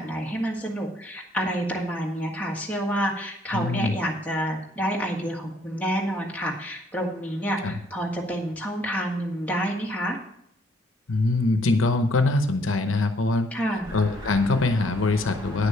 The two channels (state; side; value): normal; both; correlation 0.66